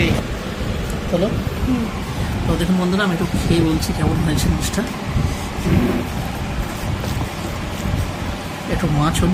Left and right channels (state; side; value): identical; both; correlation 1.00